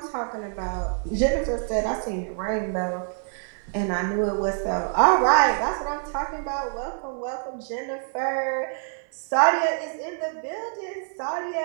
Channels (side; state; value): left; silent; 57 dB below the other